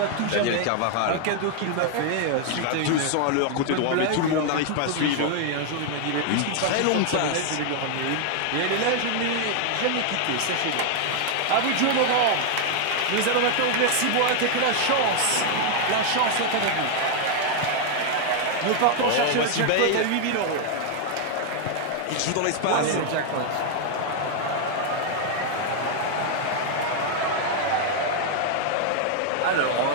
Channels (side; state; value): both; different; correlation 0.00